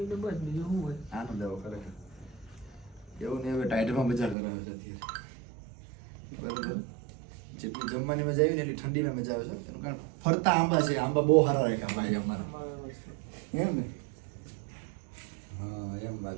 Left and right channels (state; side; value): drops out; left; at 4.4 s